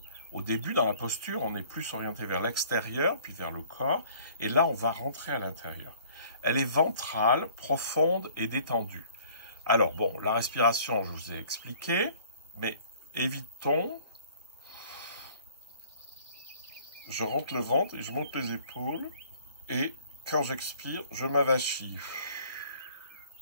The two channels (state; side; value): inverted; both; correlation -0.54